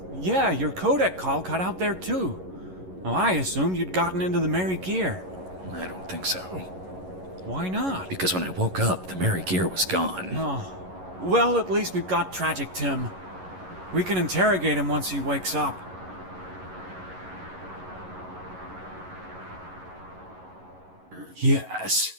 Yeah, your codec call cut out there too. Well, I assumed you'd gotten into the Merry Gear. I don't think so. Why not? Because when I woke up, the Merry Gear was gone. Oh, well, at least we've got Tragic Tim. We can interrogate him once he wakes up. Yes,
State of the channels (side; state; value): left; late; 11 ms